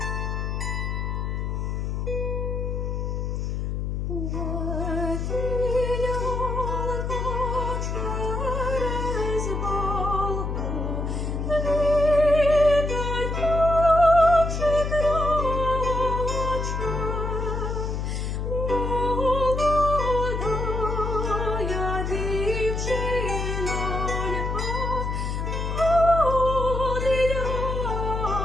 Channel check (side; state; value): left; noise; hum, 2 dB below the sound